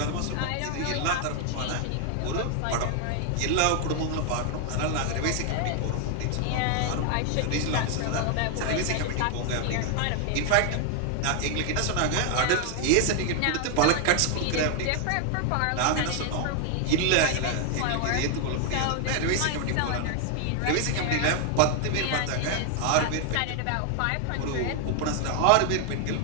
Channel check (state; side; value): different; both; correlation 0.00